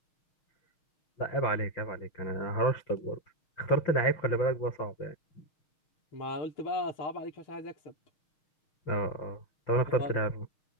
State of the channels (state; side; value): late; right; 6.4 ms